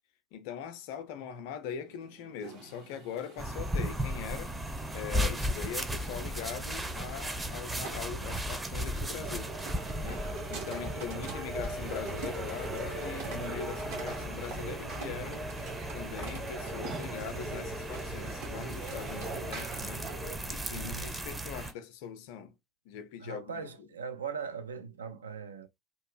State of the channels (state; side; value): normal; both; correlation 0.51